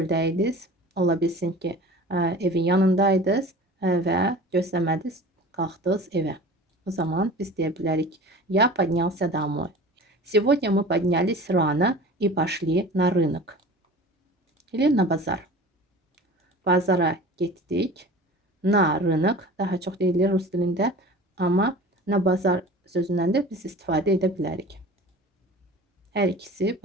ola bilsin ki, evin yanındaydınız və gözləmədiniz, qalxdınız evə. O zaman biz deyə bilərik, я поднялся домой. Сегодня мы поднялись рано и пошли на рынок. Или на базar. Bazara getdik. Na rынок daha çox deyilir rus dilində, amma na bazar sözündən də biz istifadə edə bilərik. Hər ikisi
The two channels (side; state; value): both; normal; correlation 0.40